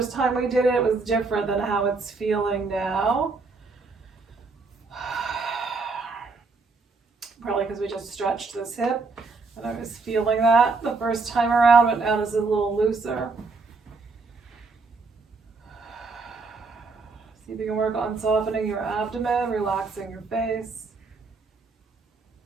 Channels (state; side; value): quieter; left; 4.0 dB